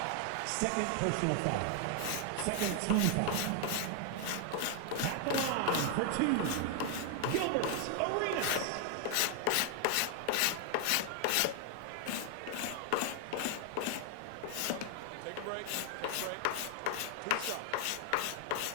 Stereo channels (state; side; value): different; both; correlation 0.00